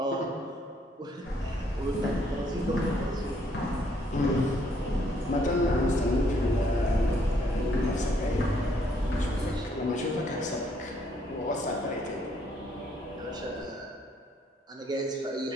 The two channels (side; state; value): both; normal; correlation 0.69